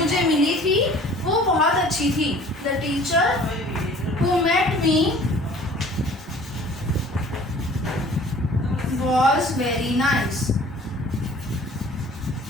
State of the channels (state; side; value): normal; both; correlation 0.49